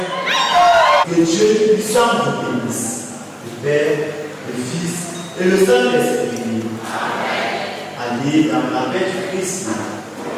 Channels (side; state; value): both; identical; correlation 1.00